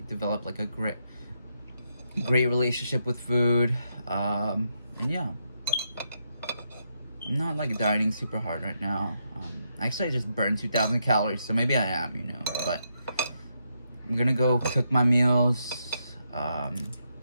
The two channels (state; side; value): inverted; both; correlation -0.80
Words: develop like a great relationship with food. And yeah, I'm not like dieting super hard right now. Actually, I just burned 2,000 calories, so maybe I am, you know. But I'm gonna go cook my meals.